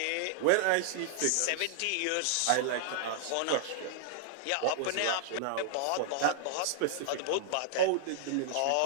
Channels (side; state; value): both; different; correlation -0.01